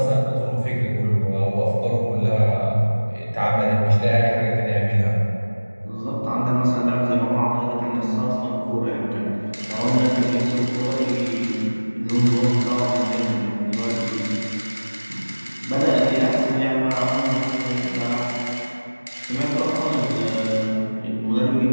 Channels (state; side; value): inverted; both; correlation -1.00